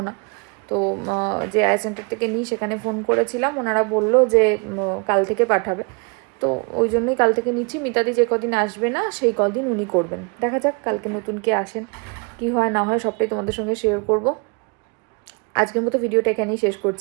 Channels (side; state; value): left; quieter; 33.8 dB